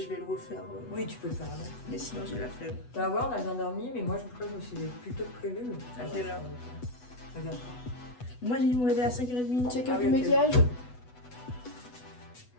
vais le refaire. Oui, tu peux le faire là. Mais sinon j'ai la flemme. Tu vas voir, on a bien dormi, mais moi je crois que je me suis plutôt prévu. À quelle heure? Regarde. Moi j'ai dû me réveiller à 5h30. Check Ah up oui, du ok. maquillage.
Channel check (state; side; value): late; right; 8.1 ms